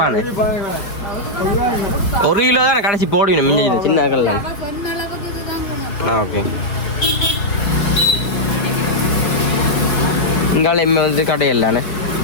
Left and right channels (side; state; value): right; late; 5.3 ms